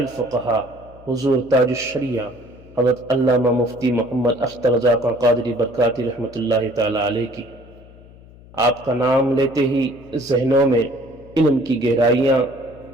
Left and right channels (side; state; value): left; noise; hum, 22 dB below the sound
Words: حضور تاج الشریعہ حضرت علامہ مفتی محمد اختر رضا خان قادری برکاتی رحمۃ اللہ تعالی علیہ کی۔ آپ کا نام لیتے ہی ذہنوں میں علم کی گہرائیاں،